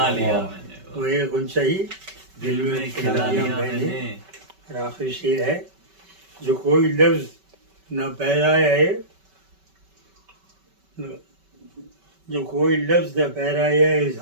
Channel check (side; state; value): left; late; 5.2 ms